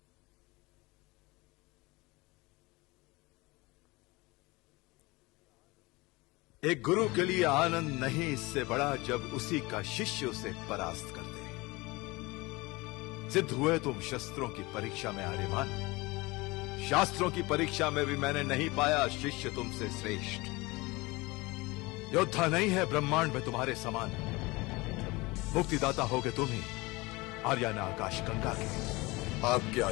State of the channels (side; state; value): right; quieter; 23.1 dB